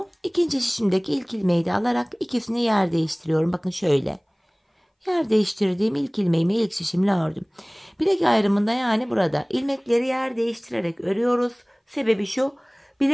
ikinci şişimdeki ilk ilmeği de alarak ikisini yer değiştiriyorum. Bakın şöyle. Yer değiştirdiğim ilk ilmeğimi ilk şişimle ördüm. Bilek ayrımında, yani burada ilmekleri yer değiştirerek örüyoruz. Sebebi şu:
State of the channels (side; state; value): both; identical; correlation 1.00